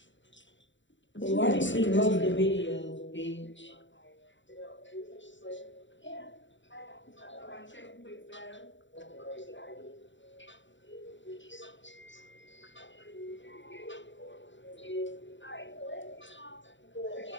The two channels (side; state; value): right; late; 0.54 ms